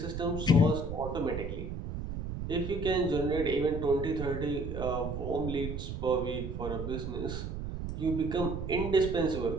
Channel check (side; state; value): right; noise; rumble, 5 dB below the sound